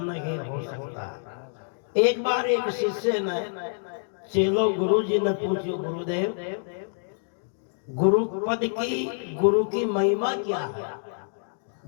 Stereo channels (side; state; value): right; silent; digital silence